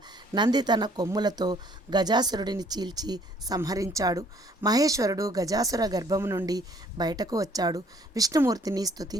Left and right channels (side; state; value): both; normal; correlation 0.60